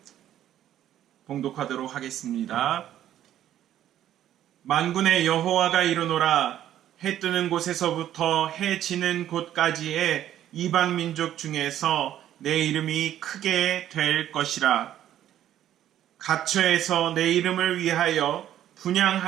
봉독하도록 하겠습니다. 만군의 여호와가 이르노라. 해 뜨는 곳에서부터 해 지는 곳까지의 이방 민족 중에서 내 이름이 크게 될 것이라. 각처에서 내 이름을 위하여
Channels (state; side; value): quieter; left; 11.6 dB